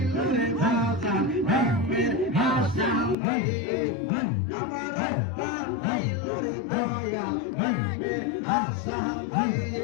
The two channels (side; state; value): right; drops out; at 3.2 s